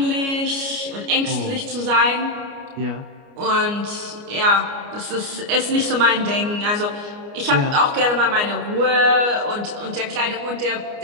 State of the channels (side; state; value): left; late; 29 ms